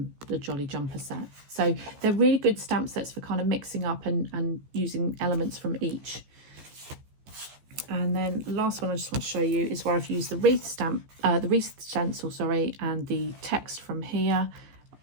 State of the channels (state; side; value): late; left; 15 ms